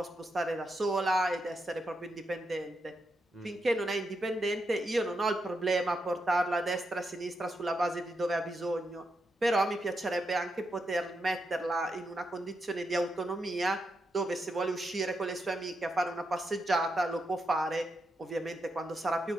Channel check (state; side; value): normal; both; correlation 0.84